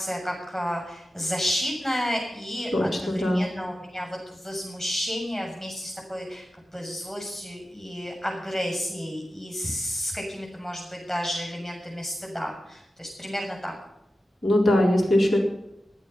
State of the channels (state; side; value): normal; both; correlation 0.93